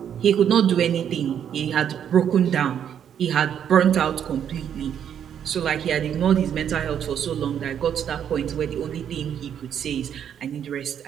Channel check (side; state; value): left; quieter; 8.9 dB